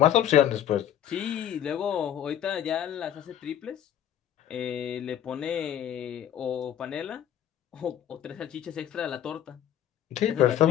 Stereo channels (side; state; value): right; quieter; 10.5 dB